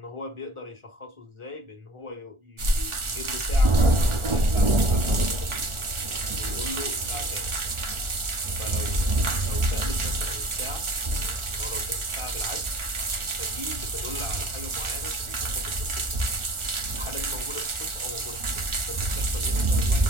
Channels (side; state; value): left; late; 1.4 ms